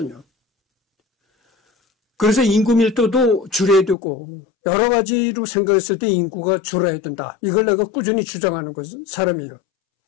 그래서 인구 밀도도 줄여야 되고 여러 가지로 생각했을 때 인구가 줄어야 된다. 이걸 내가 꾸준히 주장하는 사람이에요.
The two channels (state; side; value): drops out; right; at 4.0 s